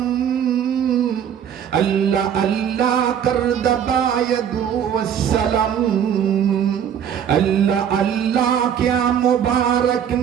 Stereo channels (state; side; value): quieter; left; 8.8 dB